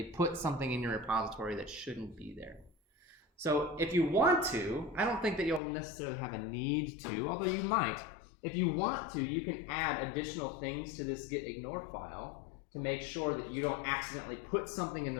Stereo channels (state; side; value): drops out; right; at 5.6 s